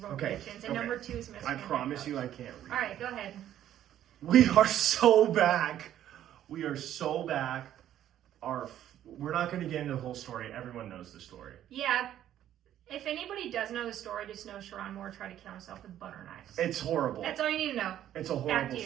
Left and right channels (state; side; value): quieter; left; 11.6 dB